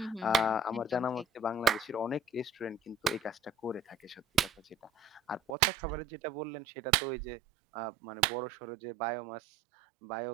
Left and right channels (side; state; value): left; drops out; at 5.5 s